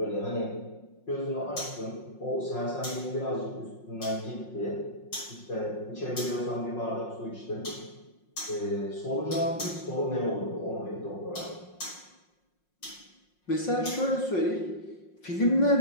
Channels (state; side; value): late; right; 5.6 ms